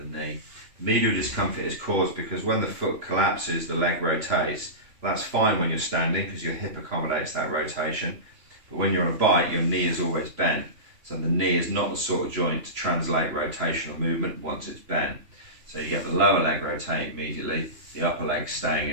knee. Medial discomfort is caused because when the foot collapses, the leg rotates. That's fine when you're standing because your hip accommodates that rotation, but when you're on a bike, your knee is always bent. So the knee is not the sort of joint to translate rotational movement once it's bent. So you get the lower leg rotate immediately, the upper leg staying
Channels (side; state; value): left; late; 2.9 ms